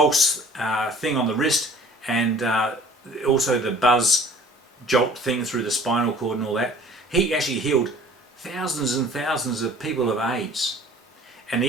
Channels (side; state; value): both; normal; correlation 0.49